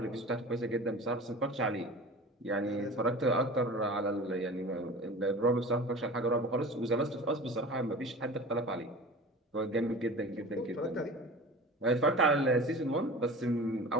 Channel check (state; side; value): normal; both; correlation 0.37